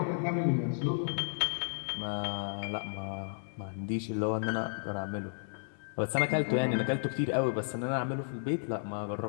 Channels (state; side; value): silent; right; 56 dB below the other